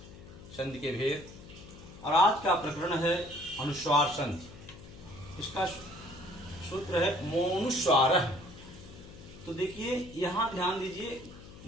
संधि के भेद। और आज का प्रकरण है अनुस्वार संधि। इसका सूत्र है मोनुस्वारः। तो देखिए यहाँ ध्यान दीजिए,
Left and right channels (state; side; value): noise; left; hum, 17 dB below the sound